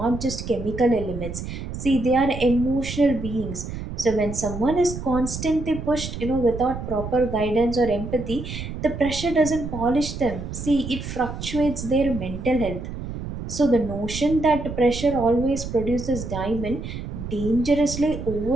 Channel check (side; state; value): right; noise; rumble, 8 dB below the sound